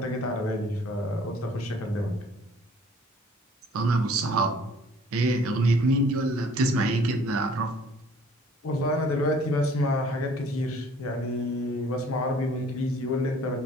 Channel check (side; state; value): both; normal; correlation 0.55